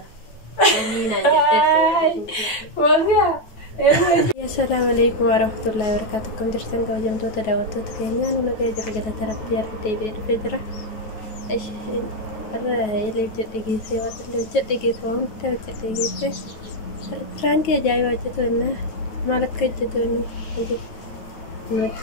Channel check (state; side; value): late; right; 9.2 ms